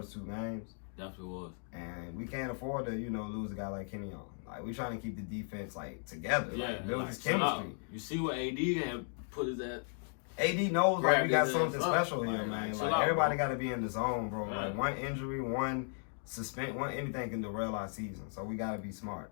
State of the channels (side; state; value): right; silent; 54 dB below the other